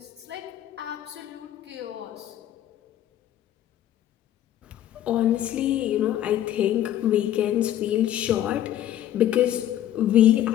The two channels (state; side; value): quieter; right; 12.0 dB